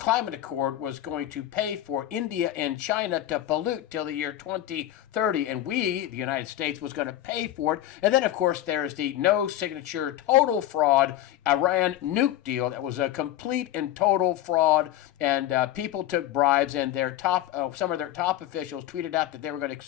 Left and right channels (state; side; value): quieter; right; 13.1 dB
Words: Accord was going to pay for India and China to pollute till the year 2030, and we, the United States, was going to pay for it. And then, of course, there's the no-signature, total fraud Iran nuke deal that was a complete and total fraud, and people took bribes, and some of their top officials tweeted out that they were going to